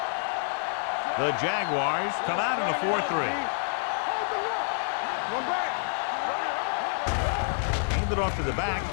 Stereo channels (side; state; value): right; silent; digital silence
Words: The Jaguars come out in a 4-3. Hold the rock. One back. Hand it off to the back.